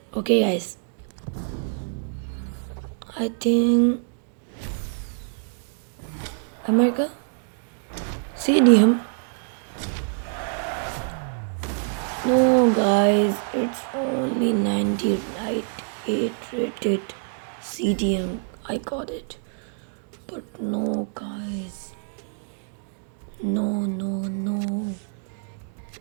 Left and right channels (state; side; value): silent; left; digital silence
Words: Okay guys, I think America CDM. No guys, it's only 98 rated CDM. I got it, but no guys, no.